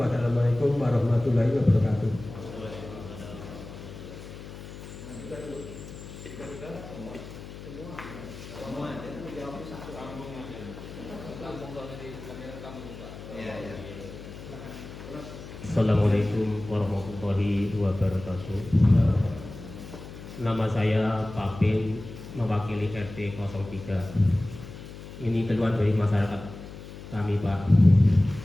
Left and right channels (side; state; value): left; noise; hum, 13 dB below the sound